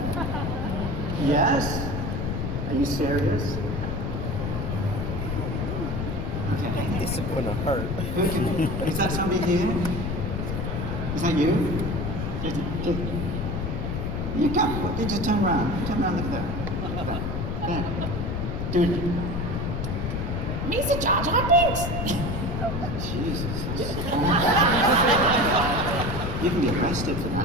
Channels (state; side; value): noise; left; rumble, 2 dB below the sound